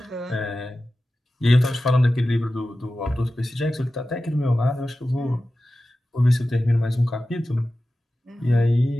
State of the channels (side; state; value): both; normal; correlation 0.94